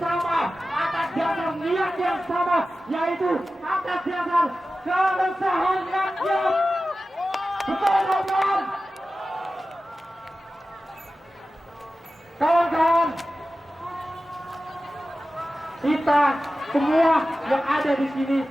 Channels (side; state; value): both; normal; correlation 0.95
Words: atas dasar niat yang sama, yaitu atas dasar keresahan rakyat. Betul kawan-kawan? Kawan-kawan, kita semua yang ada di sini